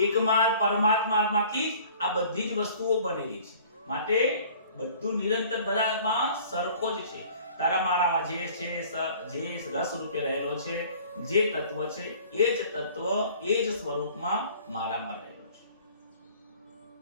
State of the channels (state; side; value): inverted; both; correlation -0.50